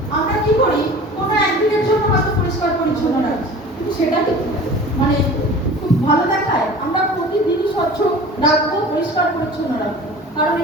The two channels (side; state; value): both; normal; correlation 0.40